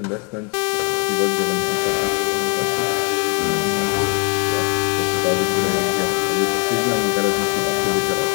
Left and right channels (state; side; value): quieter; right; 32.3 dB